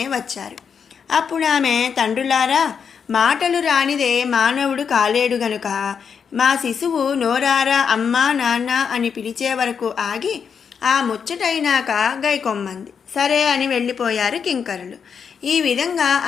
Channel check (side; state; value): right; quieter; 6.7 dB